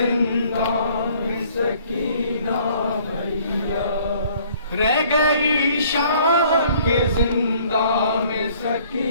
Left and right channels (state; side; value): inverted; both; correlation -0.58